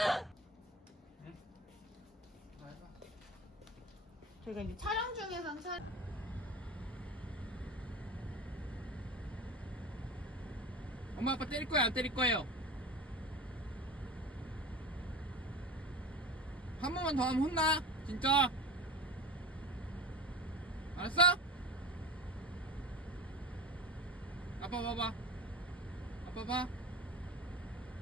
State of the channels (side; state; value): both; normal; correlation 0.31